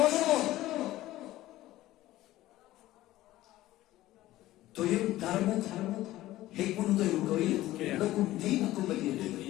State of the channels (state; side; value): quieter; right; 15.8 dB